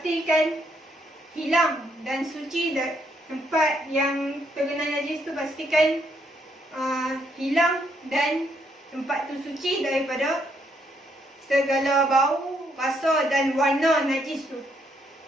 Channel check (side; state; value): both; normal; correlation 0.73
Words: hilang dan suci tempat yang terkena najis tu, pastikan hilang dan tempat tu suci daripada segala bau, rasa dan warna najis tu.